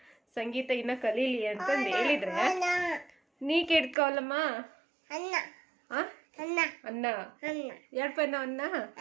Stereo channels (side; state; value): left; drops out; at 4.0 s